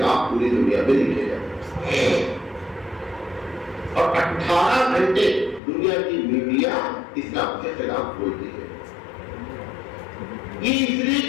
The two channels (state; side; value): drops out; right; at 5.6 s